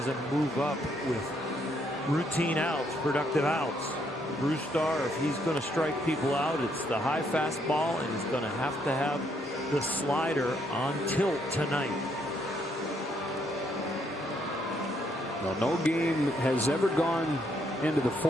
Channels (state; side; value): normal; both; correlation 0.72